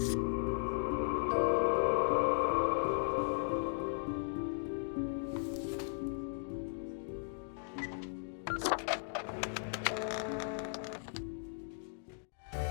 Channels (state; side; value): silent; right; digital silence